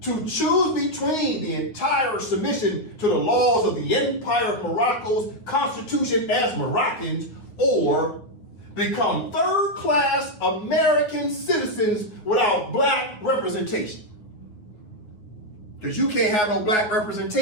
to choose between the entire submission to the laws of the Empire of Morocco's constitution as Moroccans, or become third-class American citizens without black representation. Because you can't have no black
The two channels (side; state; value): right; late; 9.4 ms